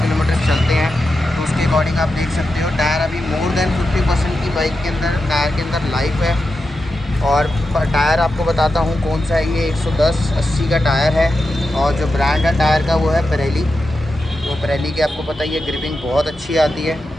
किलोमीटर चलते हैं, तो उसके अकॉर्डिंग आप देख सकते हो टायर अभी मोर देन 50% की बाइक के अंदर, टायर के अंदर लाइफ है। और टायर आपको बताता हूँ कौन सा है, ये 110/80 का टायर है और जो ब्रांड है टायर का वो है पिरेली। तो पिरेली की आपको पता ही है ग्रिपिंग बहुत अच्छी आती है।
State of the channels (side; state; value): both; normal; correlation 0.89